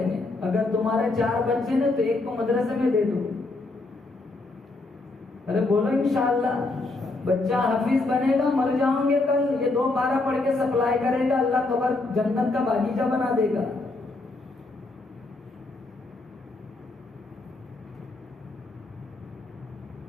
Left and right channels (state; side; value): quieter; right; 3.2 dB